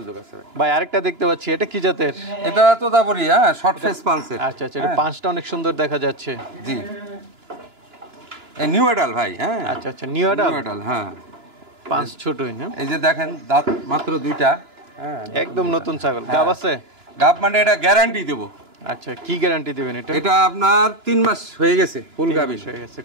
আছে। ভাই আরেকটা দেখতে পাচ্ছি, এটা কি জাতের? এটা তোতাপুরি। হ্যাঁ শর্ট ফেস পাঞ্চের। আচ্ছা আচ্ছা, এটা পাঁচটা অনেক সুন্দর দেখা যাচ্ছে। জি এই নিউ এডাল ভাই। হ্যাঁ আচ্ছা আচ্ছা, নিউ নিউ এডাল। হ্যাঁ পাঁচ ছোটই না? এই যে দেখেন দাঁত মাত্র 2টা। হ্যাঁ একদম নতুন ছাগল। গাব আছে? গাব মানে এটা গ্যারান্টি দেব। আচ্ছা, কি গ্যারান্টি দিবেন এটা? এটা আপনার 3 মাস হয়ে গেছে ফুল গাবি হয়ে গেছে।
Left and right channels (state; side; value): late; left; 2.9 ms